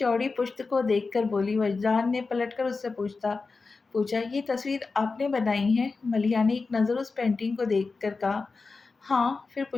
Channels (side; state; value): right; quieter; 4.2 dB